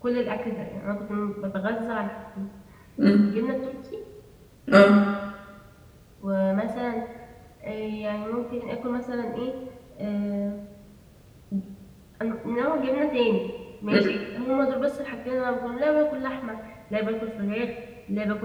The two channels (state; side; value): identical; both; correlation 1.00